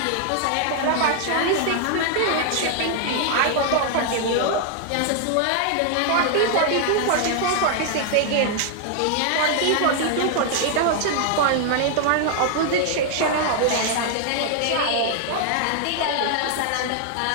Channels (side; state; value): both; different; correlation 0.00